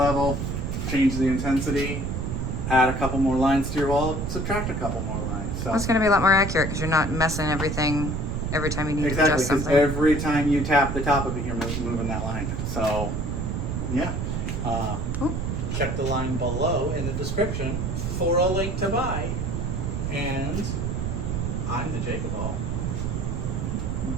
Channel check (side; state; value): right; noise; rumble, 2 dB below the sound